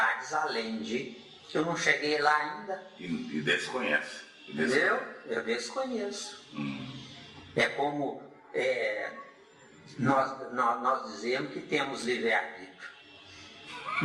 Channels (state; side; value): identical; both; correlation 1.00